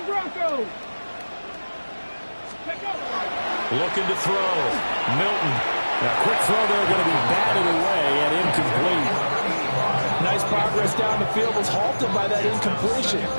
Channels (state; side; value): inverted; both; correlation -1.00